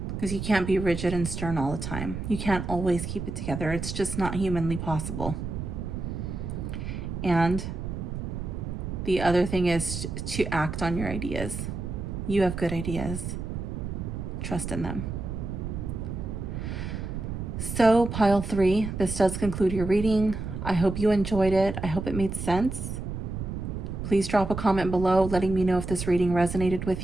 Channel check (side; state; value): right; noise; rumble, 5 dB below the sound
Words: Because you can't be rigid and stern all the time. You can't always keep it together. It's just not humanly possible. And the other thing is to act on your ideas. You have good ideas. Trust in them. So, pile 3, this does conclude your reading. I hope you enjoyed it. I hope it made sense. Please drop a comment below letting me know if this reading resonated